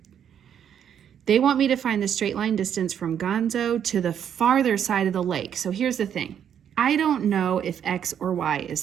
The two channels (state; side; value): quieter; left; 8.9 dB